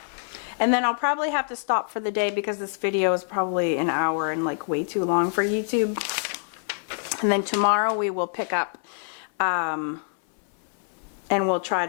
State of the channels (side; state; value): right; silent; 61 dB below the other